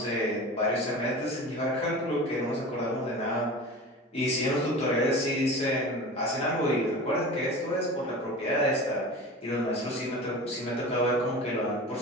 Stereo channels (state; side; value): normal; both; correlation 0.34